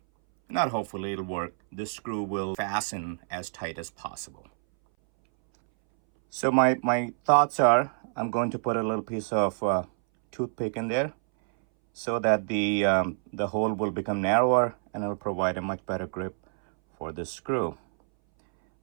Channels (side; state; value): left; silent; 60 dB below the other